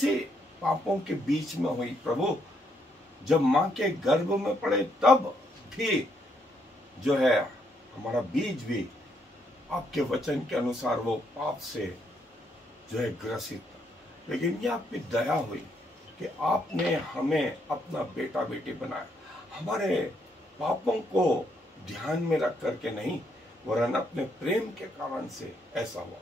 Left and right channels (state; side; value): normal; both; correlation 0.74